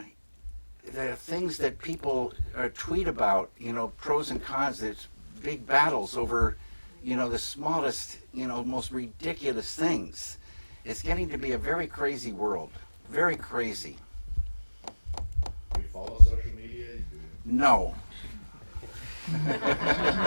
things that people tweet about, you know, pros and cons, there's big battles over, you know, the smallest, you know, most ridiculous things. It's getting to be a very crazy world. Very crazy. Do you follow social media? No.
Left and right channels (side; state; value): both; inverted; correlation -1.00